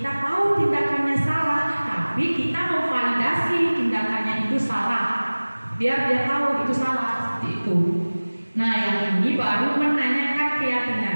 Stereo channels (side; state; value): both; inverted; correlation -1.00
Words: tahu tindakannya salah, tapi kita memvalidasi tindakannya itu salah. Biar dia tahu itu salah, seperti itu. Nah, yang ini baru menanyakan